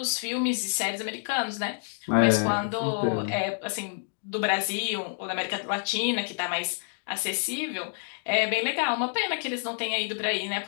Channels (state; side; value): silent; right; 59 dB below the other